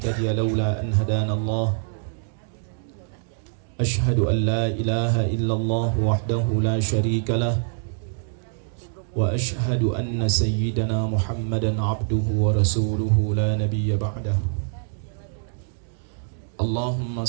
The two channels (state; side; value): silent; left; 62 dB below the other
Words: lawla an hadana Allah. أشهد أن لا إله إلا الله وحده لا شريك له وأشهد أن سيدنا محمدا عبده ورسوله لا نبي بعده اللهم